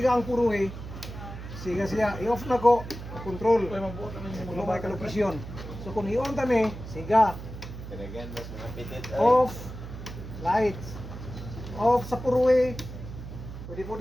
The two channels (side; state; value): right; noise; hum, 10 dB below the sound